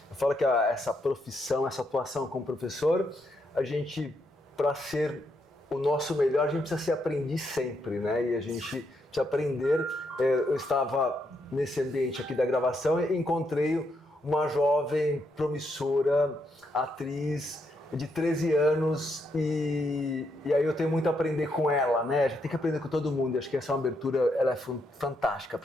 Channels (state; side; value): normal; both; correlation 0.78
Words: Eu falo que essa profissão, essa atuação como professor, a gente, para ser o nosso melhor, a gente precisa ser aprendiz sempre, né? E a gente precisa aprender. Eu estava nesse ambiente aqui da gravação e encontrei uma jovem promissora, atriz de 13 anos e aí eu tenho muito a aprender com ela, né? A gente tem que aprender com todo mundo. Acho que essa é uma abertura, ela é fantástica